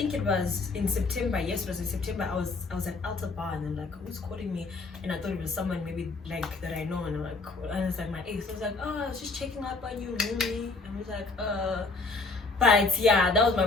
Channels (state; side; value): quieter; right; 3.7 dB